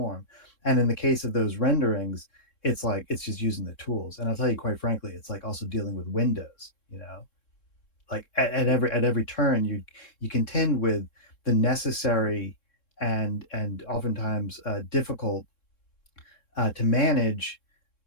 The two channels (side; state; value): right; late; 3.7 ms